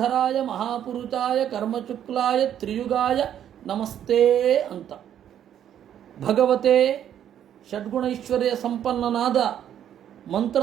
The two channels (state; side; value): quieter; left; 10.1 dB